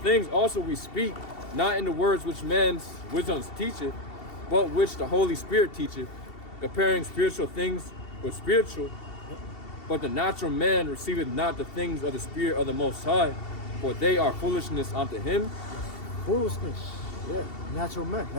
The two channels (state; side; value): late; right; 2.7 ms